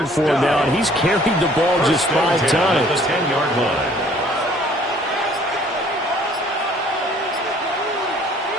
for him now, and he's carried the ball just 5 times. The 10-yard line.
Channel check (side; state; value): both; normal; correlation 0.57